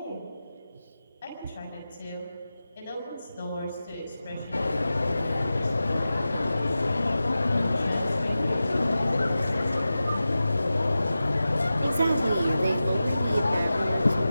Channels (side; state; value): both; inverted; correlation -0.94